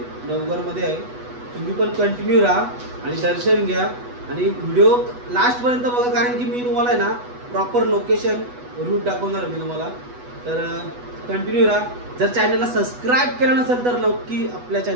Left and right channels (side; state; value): left; late; 8.1 ms